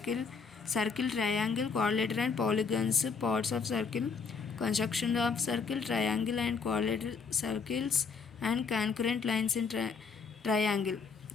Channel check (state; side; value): quieter; right; 5.2 dB